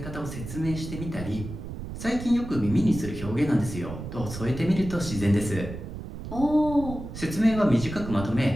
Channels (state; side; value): noise; right; rumble, 9 dB below the sound